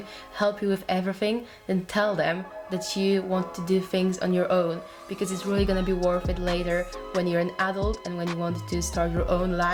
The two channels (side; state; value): both; identical; correlation 1.00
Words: help you with everything, then tell them that you want to do things on your own, because it's really gonna be worth it later when you're an adult and when you want to start your own